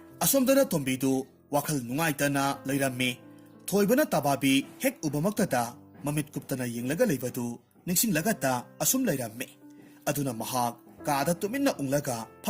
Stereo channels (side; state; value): both; identical; correlation 1.00